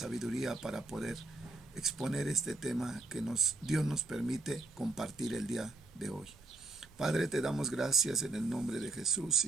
para poder exponer este tema que Dios nos permite compartir el día de hoy. Padre, te damos gracias en el nombre de Jesús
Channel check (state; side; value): quieter; left; 3.1 dB